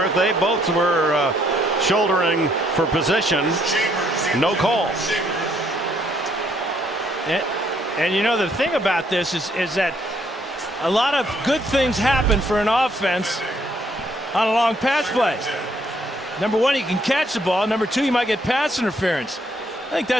they both were shouldering for position. No call. And you know, the thing about this is that a lot of good things happen for an offense on a long pass play. Number one, you can catch the ball. Number two, you might get pass interference. I think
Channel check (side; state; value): both; normal; correlation 0.69